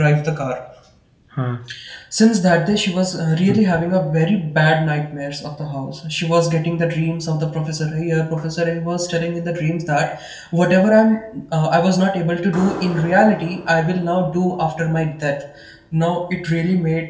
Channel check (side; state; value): both; identical; correlation 1.00